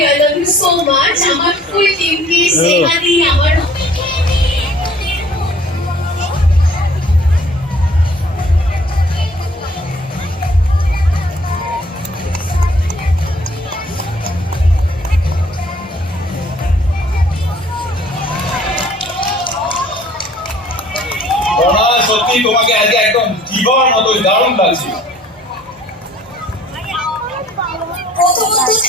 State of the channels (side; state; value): both; normal; correlation 0.56